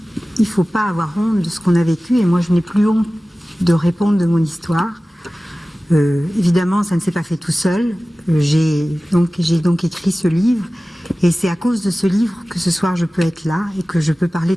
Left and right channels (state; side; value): normal; both; correlation 0.97